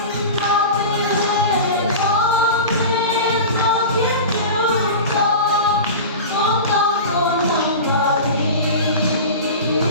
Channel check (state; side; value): inverted; both; correlation -0.30